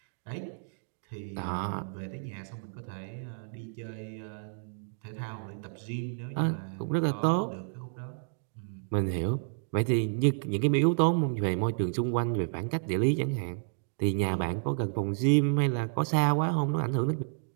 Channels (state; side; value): silent; left; digital silence